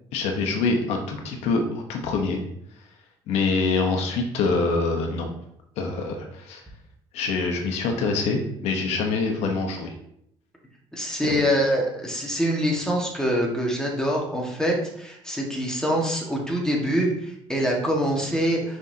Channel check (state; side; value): normal; both; correlation 0.53